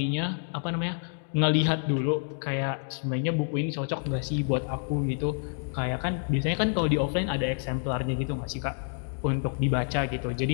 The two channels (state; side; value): silent; right; 59 dB below the other